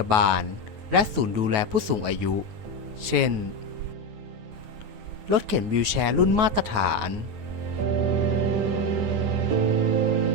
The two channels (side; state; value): left; late; 9.4 ms